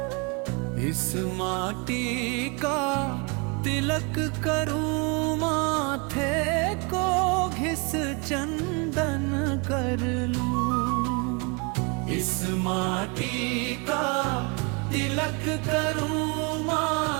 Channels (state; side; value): quieter; left; 31.4 dB